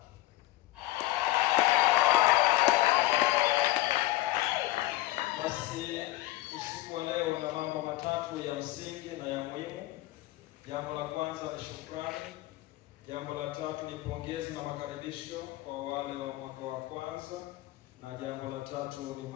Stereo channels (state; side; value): quieter; right; 17.2 dB